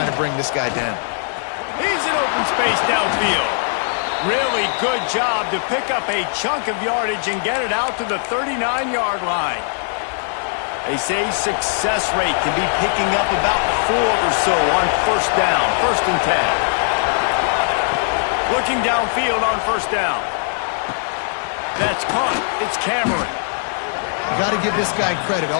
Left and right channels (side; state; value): right; silent; digital silence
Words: to bring this guy down. He's in open space downfield. Really good job to pick up a chunk of yardage and get it out to the 39-yard line. They say success rate can be picking up about 4 or so on first down, 1st and 10. Looking downfield on first down. That's caught. It's Cameron. You got to give this guy credit